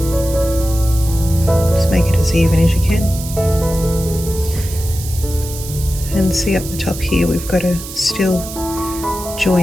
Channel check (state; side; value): noise; right; hiss, 11 dB below the sound